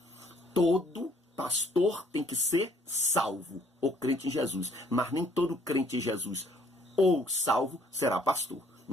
Todo pastor tem que ser salvo, ou crente em Jesus, mas nem todo crente em Jesus ou salvo será pastor.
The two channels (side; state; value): both; normal; correlation 0.62